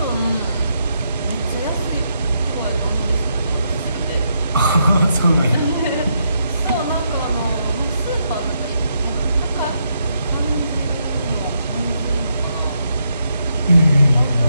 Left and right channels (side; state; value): both; inverted; correlation -0.79